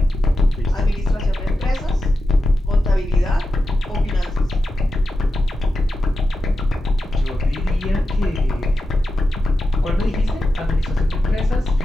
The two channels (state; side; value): normal; both; correlation 0.91